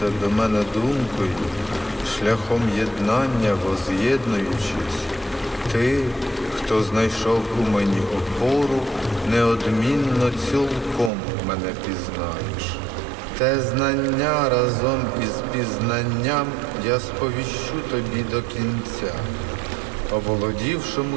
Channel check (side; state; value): left; drops out; at 11.1 s